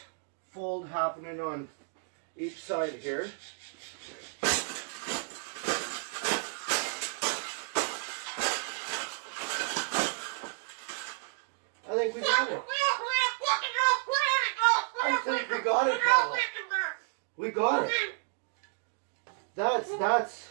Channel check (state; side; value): silent; left; 57 dB below the other